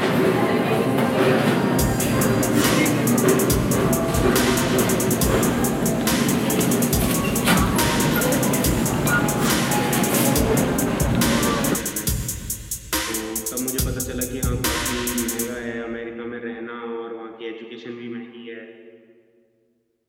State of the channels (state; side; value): identical; both; correlation 1.00